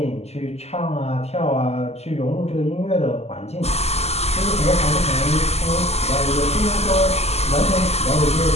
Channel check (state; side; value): late; right; 0.30 ms